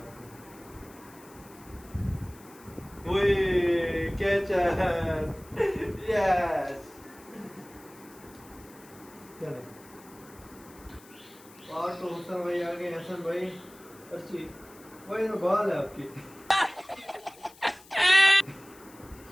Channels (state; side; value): noise; left; hiss, 23 dB below the sound